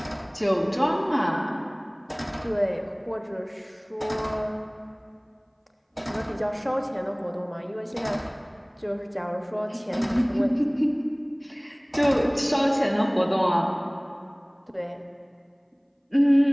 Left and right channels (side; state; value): both; identical; correlation 1.00